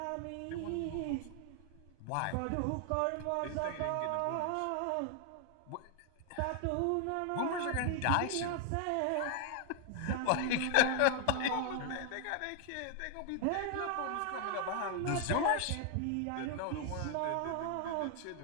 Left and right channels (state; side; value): different; both; correlation 0.00